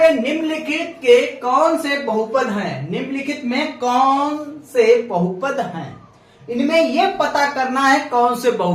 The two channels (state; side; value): identical; both; correlation 1.00